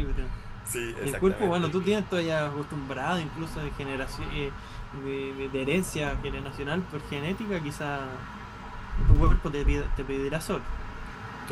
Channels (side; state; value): both; identical; correlation 1.00